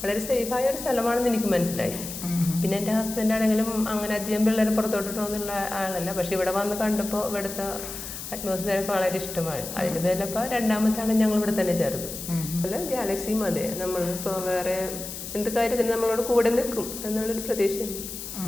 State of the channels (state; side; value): noise; left; hiss, 9 dB below the sound